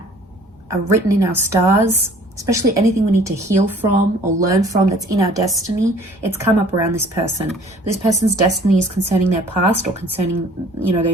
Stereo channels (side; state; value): both; normal; correlation 0.53